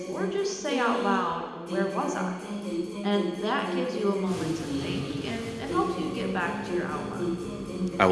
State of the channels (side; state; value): both; identical; correlation 1.00